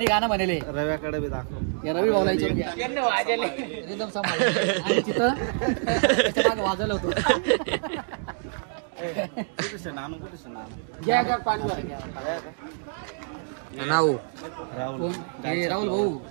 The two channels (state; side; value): silent; left; digital silence